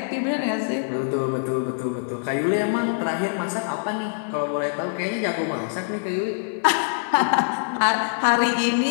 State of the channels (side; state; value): right; silent; digital silence